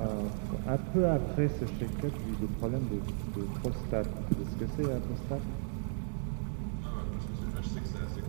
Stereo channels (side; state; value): left; silent; digital silence